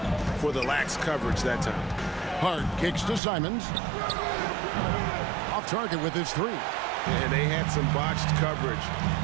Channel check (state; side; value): drops out; left; at 3.2 s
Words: for the lax coverage that time. Hart kicks to Simons. Off target with his 3. And they had some botched coverage